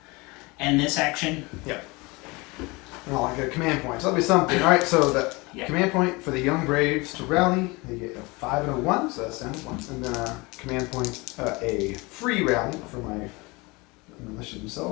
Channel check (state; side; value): quieter; right; 25.1 dB